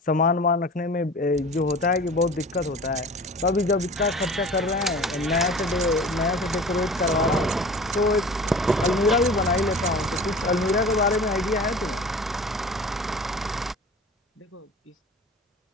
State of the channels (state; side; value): normal; both; correlation 0.39